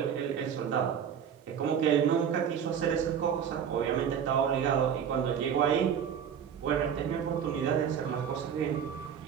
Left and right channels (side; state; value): left; quieter; 8.2 dB